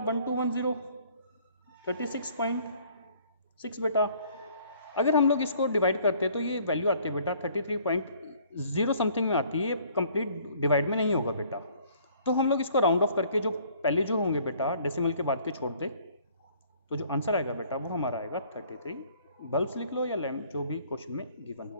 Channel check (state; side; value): inverted; both; correlation -0.58